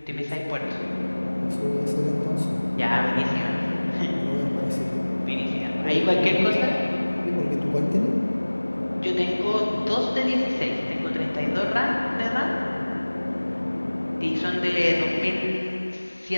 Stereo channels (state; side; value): inverted; both; correlation -1.00